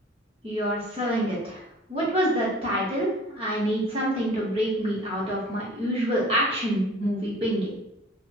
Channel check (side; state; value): both; normal; correlation 0.47